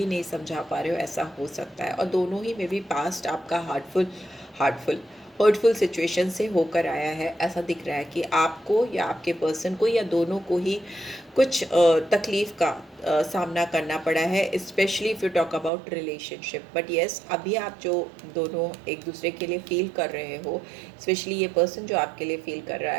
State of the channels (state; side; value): drops out; left; at 15.7 s